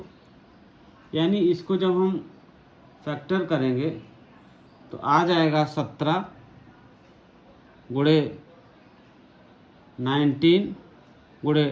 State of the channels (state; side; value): identical; both; correlation 1.00